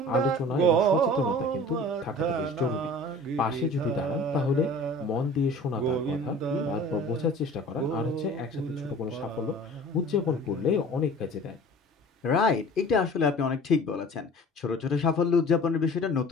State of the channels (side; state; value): both; normal; correlation 0.44